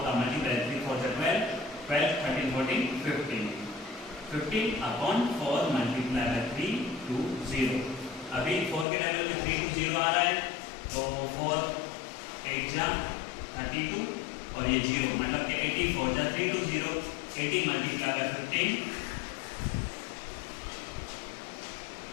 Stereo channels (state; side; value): drops out; right; at 8.8 s